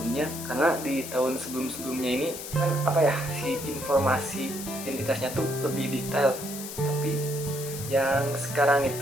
karena di tahun sebelum-sebelumnya ini kan apa ya, si informasi identitasnya tuh lebih detail. Tapi yang sekarang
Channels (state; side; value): noise; left; hiss, 9 dB below the sound